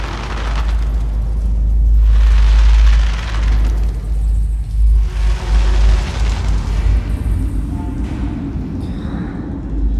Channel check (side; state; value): both; identical; correlation 1.00